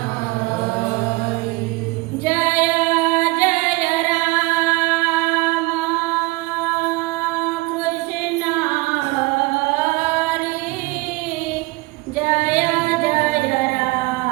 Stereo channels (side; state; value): left; quieter; 23.7 dB